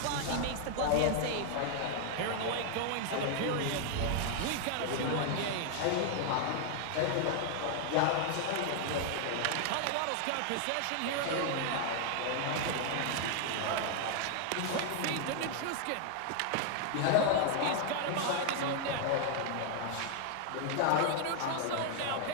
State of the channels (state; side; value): different; both; correlation 0.00